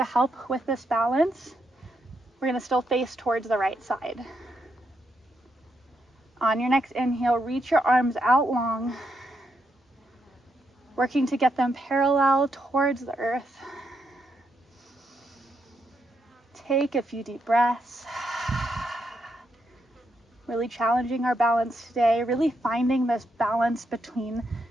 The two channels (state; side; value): normal; both; correlation 0.80